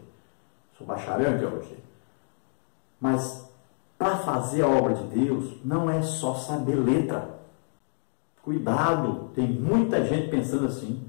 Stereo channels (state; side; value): silent; right; digital silence